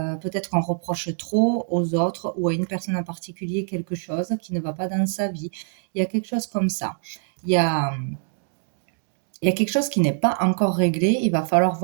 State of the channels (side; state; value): left; silent; digital silence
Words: qu'on reproche trop aux autres ou à une personne en particulier quelque chose qui ne va pas dans sa vie. Il y a quelque chose comme ça. Il y a, il y a quelque chose qui n'est pas encore réglé. Il va falloir